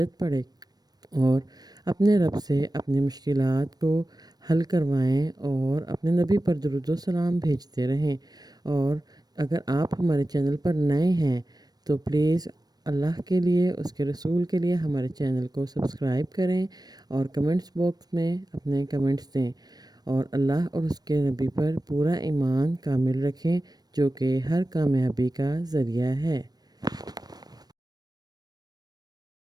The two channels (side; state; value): left; late; 0.19 ms